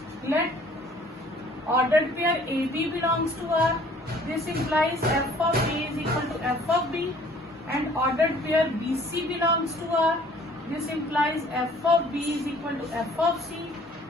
let order pair A B belongs to R, this implies F of A is equal to F of B, and ordered pair B C belongs to R, this implies f of b is equal to f of c।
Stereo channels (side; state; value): both; normal; correlation 0.55